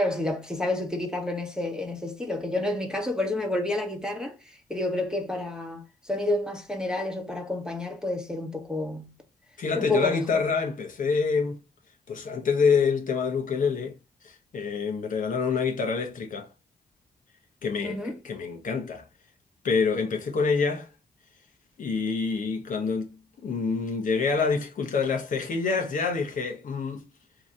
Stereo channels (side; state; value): right; quieter; 3.8 dB